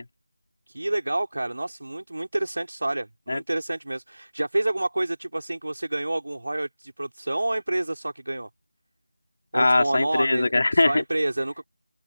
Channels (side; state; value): both; inverted; correlation -0.98